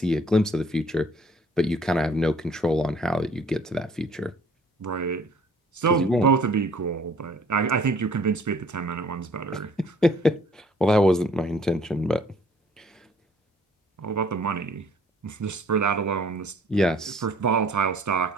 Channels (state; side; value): normal; both; correlation 0.57